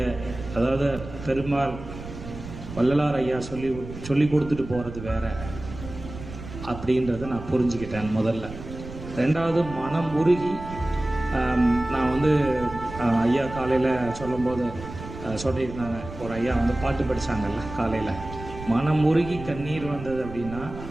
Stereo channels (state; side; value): noise; right; rumble, 12 dB below the sound